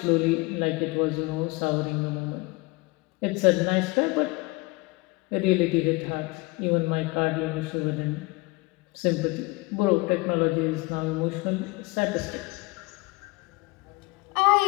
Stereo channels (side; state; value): right; quieter; 24.2 dB